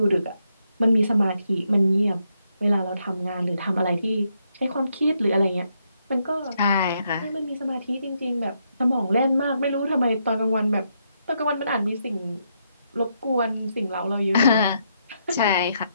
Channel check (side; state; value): both; inverted; correlation -0.78